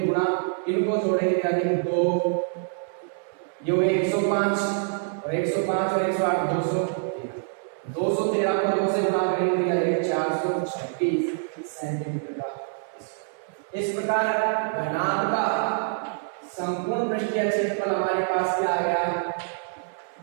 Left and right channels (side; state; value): left; silent; 61 dB below the other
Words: गुणा, इनको जोड़ेंगे याद है कि 2 ये हुए 105 और 105 और 108 213 को 2 से गुणा करेंगे तो याद 426 सेंटीमीटर का। इस प्रकार घनाभ का संपूर्ण पृष्ठीय क्षेत्रफल हमारे पास क्या आ गया